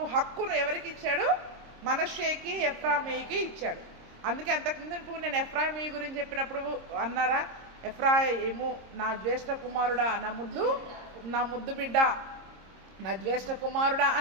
హక్కును ఎవరికి ఇచ్చాడు, మనష్షేకి, ఎఫ్రాయిముకి ఇచ్చాడు. అందుకే అంతకుముందు నేను ఎఫ్రాయిము గురించి చెప్పినప్పుడు అన్నారా, ఎఫ్రాయిము నా జ్యేష్ఠ కుమారుడా, నా ముద్దు బిడ్డ, నా జ్యేష్ఠ కుమారుడా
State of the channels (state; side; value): late; left; 26 ms